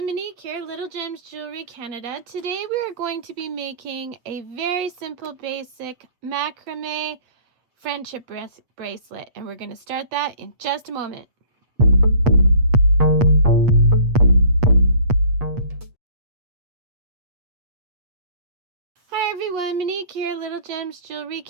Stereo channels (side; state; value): left; late; 8.3 ms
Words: Monique here, Little Gems Jewelry Canada. Today we are going to be making a very simple basic macrame friendship bracelet, and we're going to start that in just a moment. Hi everyone, Monique here, Little Gems Jewelry